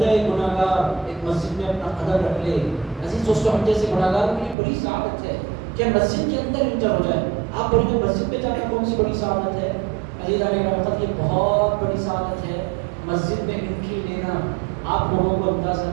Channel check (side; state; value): left; drops out; at 4.5 s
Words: گناہ گار ایک مسجد میں اپنا قدم رکھ لے۔ عزیز دوستو، ہم جیسے گناہ گاروں کی بڑی سعادت ہے کہ مسجد کے اندر انٹر ہو جائے۔ آپ بولیں گے مسجد میں جانا کون سی بڑی سعادت ہے؟ عزیزان گرامی، یہ بہت بڑی سعادت ہے مسجد میں انٹری لینا۔ آپ لوگوں کو اندازہ